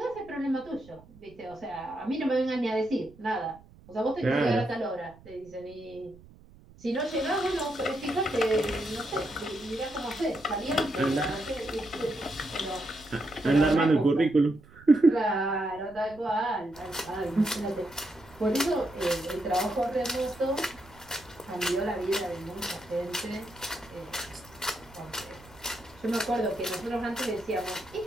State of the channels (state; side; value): noise; right; rumble, 23 dB below the sound